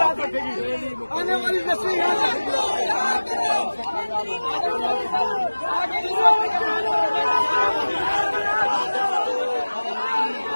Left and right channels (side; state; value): both; inverted; correlation -1.00